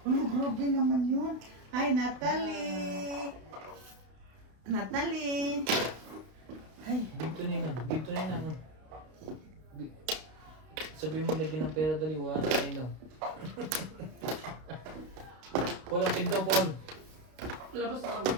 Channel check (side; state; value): left; late; 32 ms